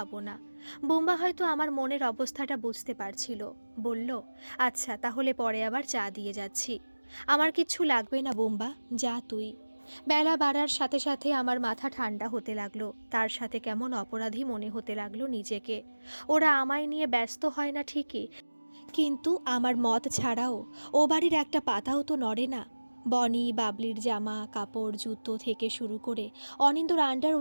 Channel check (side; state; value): both; inverted; correlation -1.00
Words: না। বুম্বা হয়তো আমার মনের অবস্থাটা বুঝতে পারছিল। বলল আচ্ছা তাহলে পরে আবার চা দিয়ে যাচ্ছি। আমার কিচ্ছু লাগবে না বুম্বা, যা তুই। বেলা বাড়ার সাথে সাথে আমার মাথা ঠান্ডা হতে লাগলো। তার সাথে কেমন অপরাধী মনে হতে লাগলো নিজেকে। ওরা আমায় নিয়ে ব্যস্ত হয় না ঠিকই, কিন্তু আমার মত ছাড়াও ও বাড়ির একটা পাতাও তো নড়ে না। বনি বাবলির জামা কাপড় জুতো থেকে শুরু করে অনিন্দর